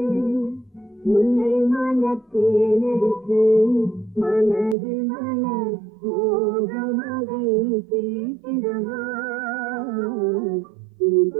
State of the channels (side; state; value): left; drops out; at 4.8 s